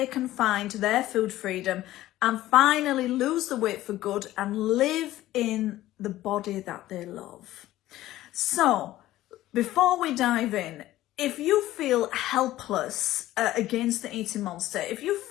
can find their food freedom and finally lose the weight for good and live in the body that they love. So, before we dive in, if you feel helpless against the eating monster, if you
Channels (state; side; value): quieter; right; 15.2 dB